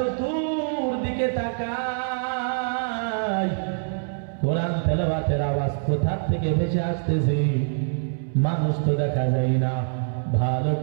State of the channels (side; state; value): left; silent; 62 dB below the other